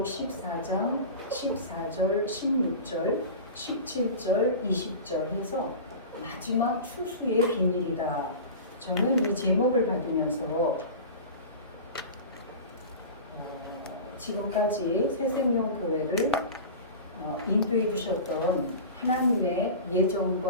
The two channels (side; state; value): both; inverted; correlation -0.32